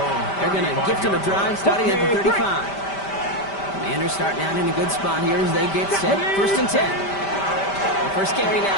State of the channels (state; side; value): late; right; 5.1 ms